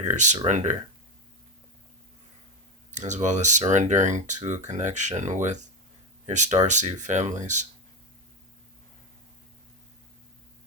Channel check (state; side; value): normal; both; correlation 0.14